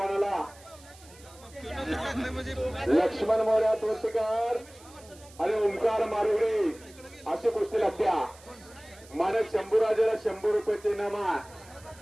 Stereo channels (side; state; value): right; noise; hiss, 23 dB below the sound